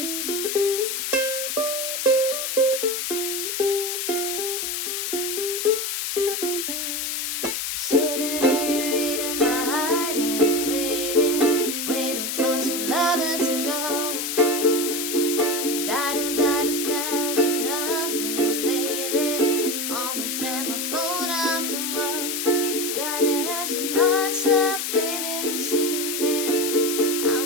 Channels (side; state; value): left; noise; hiss, 2 dB below the sound